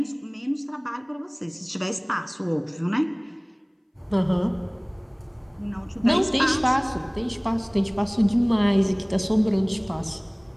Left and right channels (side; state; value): both; identical; correlation 1.00